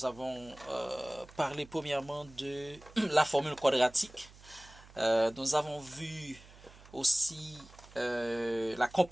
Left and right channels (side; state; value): right; noise; hum, 22 dB below the sound